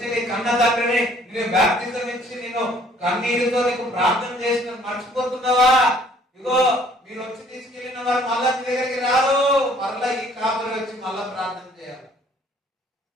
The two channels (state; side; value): normal; both; correlation 0.59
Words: నీ కన్న తండ్రిని, నేను బాప్తిజం ఇచ్చి నేను కన్నీరుతో నీకు ప్రార్థన చేసిన మర్చిపోతున్నావా? ఇగో మీరు వచ్చి తీసుకెళ్లిన వారు మళ్ళా నీ దగ్గరికి రారు. మళ్ళా ఈ కాపురి వచ్చి మళ్ళా ప్రార్థన చేయాలి.